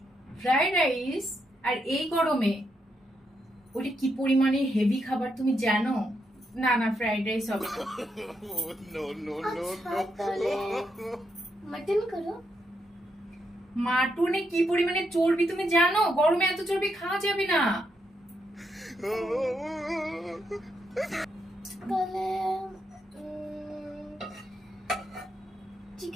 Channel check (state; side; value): normal; both; correlation 0.81